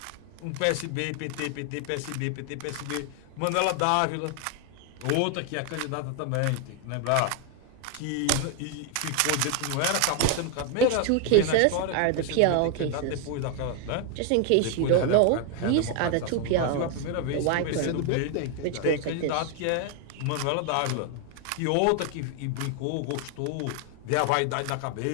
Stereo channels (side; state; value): both; different; correlation 0.00